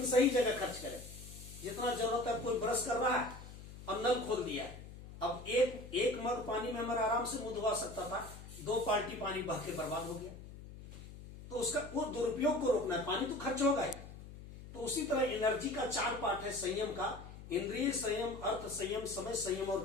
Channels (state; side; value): noise; left; hum, 14 dB below the sound